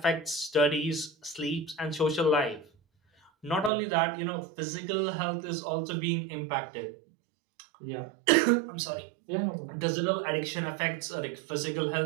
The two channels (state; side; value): drops out; left; at 3.7 s